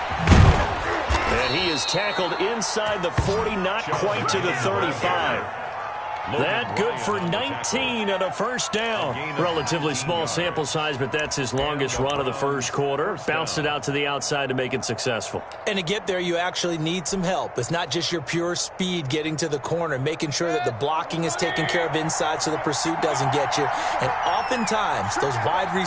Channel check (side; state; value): both; identical; correlation 1.00